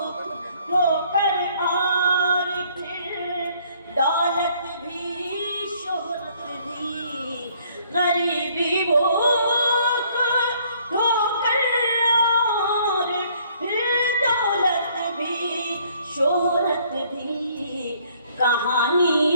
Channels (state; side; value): inverted; both; correlation -0.63